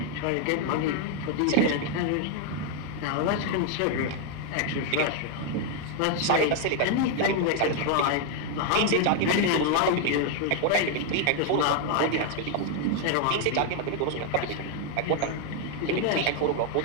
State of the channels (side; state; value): both; different; correlation 0.01